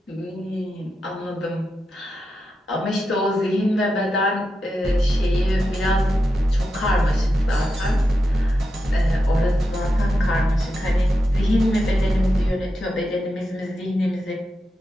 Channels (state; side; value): normal; both; correlation 0.88